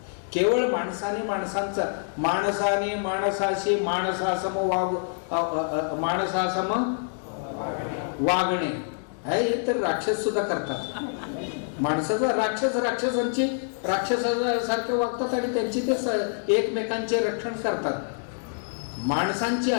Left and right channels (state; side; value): silent; right; digital silence